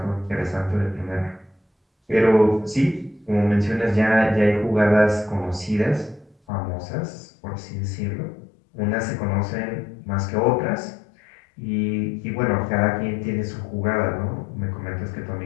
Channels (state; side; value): drops out; right; at 6.4 s